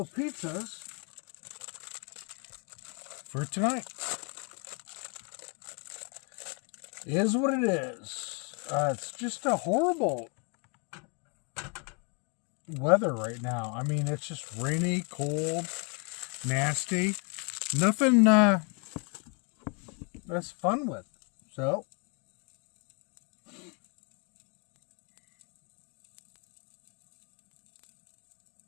pizzas for tonight. It is what it is. It's just a horrible weather right now. I mean, it's just rainy, cold, nasty. Nothing that's fun with. So,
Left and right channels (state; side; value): quieter; right; 35.6 dB